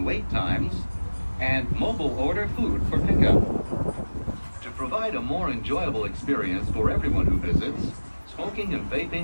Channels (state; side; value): inverted; both; correlation -1.00